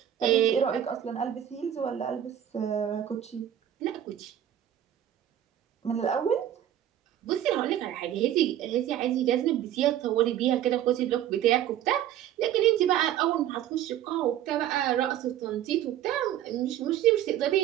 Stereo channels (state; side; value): quieter; left; 11.3 dB